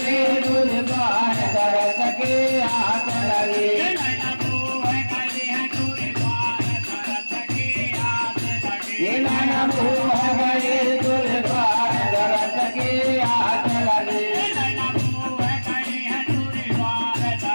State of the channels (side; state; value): both; inverted; correlation -1.00